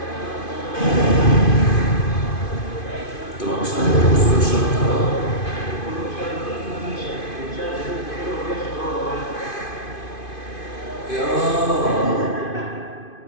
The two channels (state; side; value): late; right; 2.5 ms